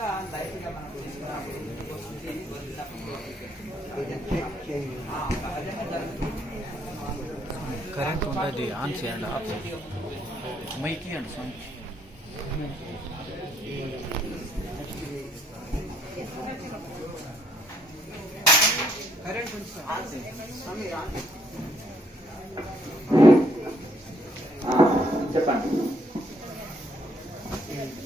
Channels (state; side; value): normal; both; correlation 0.68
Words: లైట్ గా మనకు సహజంగా జరుగుతుంది. కరెంట్ ఉంటుంది, ఆన్ చేయండి, ఆఫ్ చేయండి, మైక్ ఇవ్వండి స్వామి. కరెంట్ చెప్పండి.